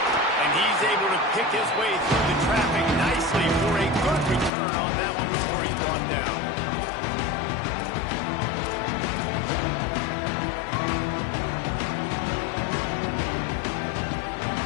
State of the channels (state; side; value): drops out; right; at 4.5 s